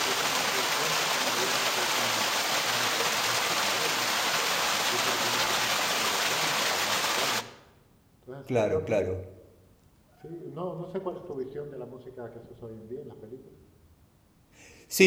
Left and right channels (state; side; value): identical; both; correlation 1.00